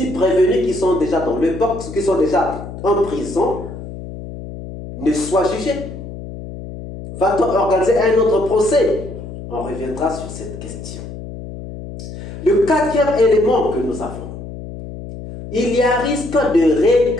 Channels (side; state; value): left; noise; hum, 11 dB below the sound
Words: prévenus qui sont déjà dans le box, qui sont déjà en prison, ne soient jugés? Va-t-on organiser un autre procès? On reviendra sur cette question. Le 4e élément que nous avons, il y a risque de